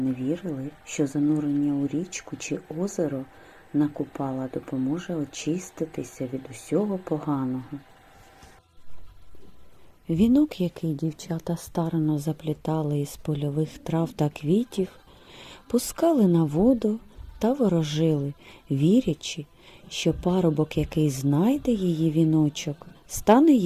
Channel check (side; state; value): both; identical; correlation 1.00